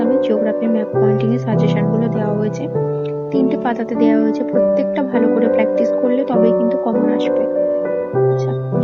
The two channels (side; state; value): both; identical; correlation 1.00